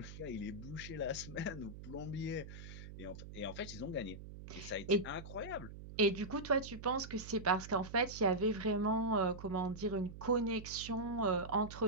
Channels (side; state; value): right; noise; hum, 12 dB below the sound